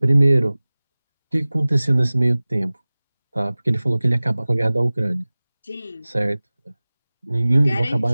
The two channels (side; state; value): both; inverted; correlation -0.99